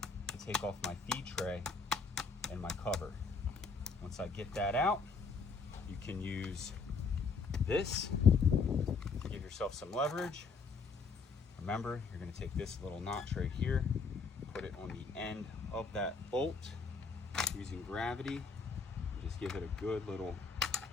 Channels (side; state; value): right; quieter; 4.8 dB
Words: to take off my feed tray and my cover. Once I get that out, you can use this to give yourself some leverage. Remember, you're going to take this little notch right here, put it on the end of that bolt using gravity, and just give it a good little